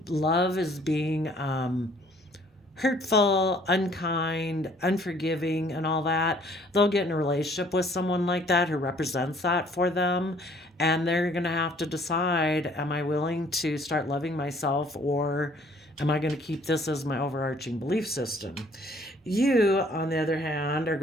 love as being hurtful, unkind, unforgiving, and all that, they'll get in a relationship with someone like that who represents that for them. And they're going to have to decide, am I willing to start loving myself, or am I going to keep this as my overarching belief system? You, on the other hand, are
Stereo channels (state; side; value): normal; both; correlation 0.59